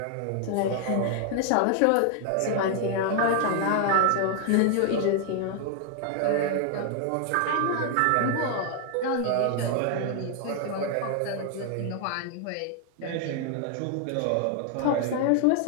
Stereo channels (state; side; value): different; both; correlation 0.00